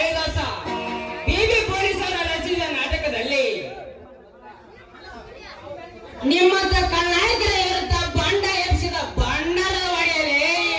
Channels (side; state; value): both; identical; correlation 1.00